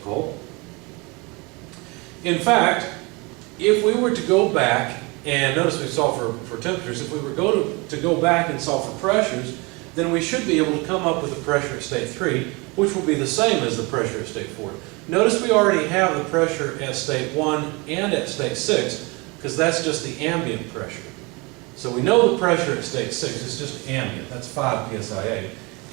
In fact, if we were to go back, and notice we solved for temperatures, if we were to go back and solve for pressures, then we should be able to come up with the pressure at state 3, which will be the same as the pressure at state 4. Notice we already have the pressure at state 1 and at state 6, because that's just the ambient pressure. So we know the pressure at state 6 is just ambient, that's 5 psia.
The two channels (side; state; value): left; quieter; 27.2 dB